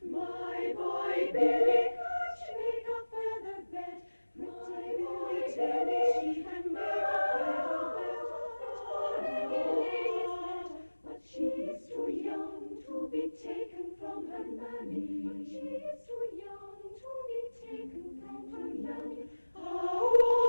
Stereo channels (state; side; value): inverted; both; correlation -1.00